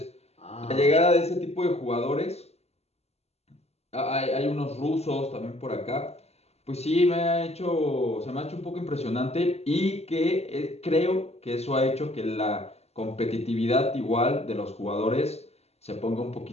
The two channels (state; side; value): late; right; 0.30 ms